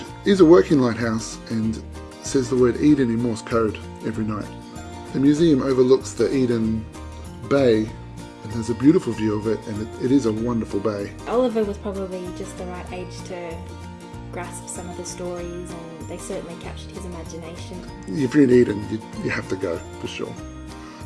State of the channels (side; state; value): both; identical; correlation 1.00